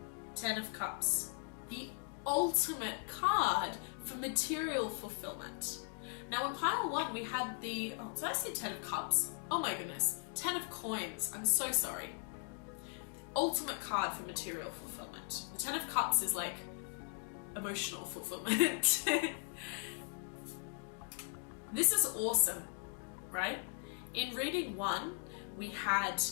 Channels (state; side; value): silent; right; 52 dB below the other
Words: 10 of Cups, the ultimate card for material fulfillment. Now in pile 1 we had the, oh, did I say 10 of Cups? Oh my goodness, 10 of Coins, I'm so sorry. The ultimate card for material fulfillment. The 10 of Cups is like emotional fulfillment. This is awesome, right? In reading 1, we had